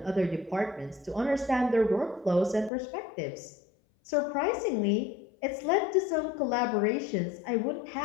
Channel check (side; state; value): right; drops out; at 2.7 s